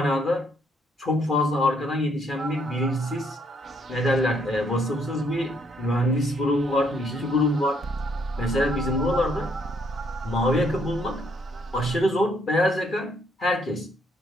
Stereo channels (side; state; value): both; normal; correlation 0.70